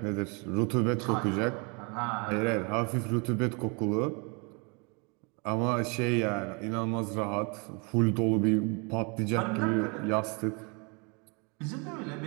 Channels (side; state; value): left; quieter; 32.4 dB